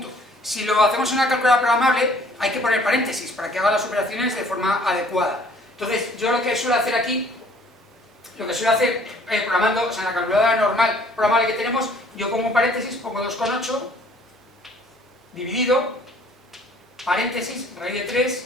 Si lo hacemos en una calculadora programable, hay que poner paréntesis para que haga las operaciones de forma adecuada. Entonces, yo lo que suelo hacer aquí, programando, o sea, en la calculadora normal programable que tenemos, yo pongo un paréntesis, pongo 2,8, dividido, paréntesis, raíz de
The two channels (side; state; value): both; normal; correlation 0.56